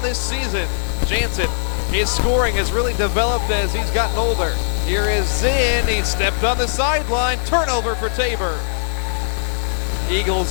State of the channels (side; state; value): right; silent; digital silence